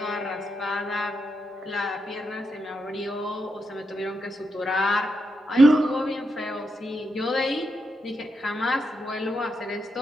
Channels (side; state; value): both; normal; correlation 0.83